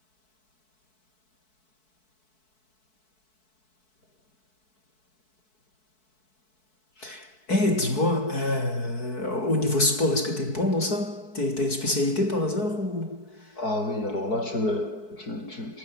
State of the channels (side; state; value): right; late; 4.6 ms